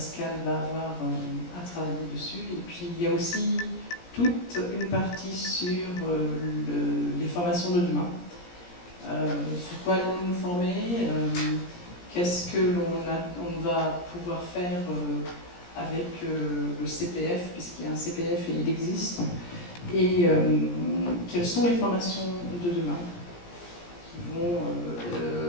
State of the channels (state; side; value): late; right; 17 ms